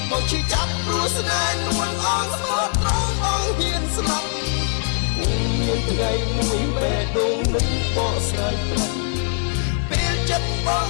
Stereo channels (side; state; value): right; silent; 64 dB below the other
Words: បងឈឺចាប់ព្រោះស្នេហ៍នួនអងស្មោះត្រង់បងហ៊ានស្លាប់មានថ្ងៃមួយបេះដូងនឹងបកស្រាយប្រាប់ពេលចិត្តបង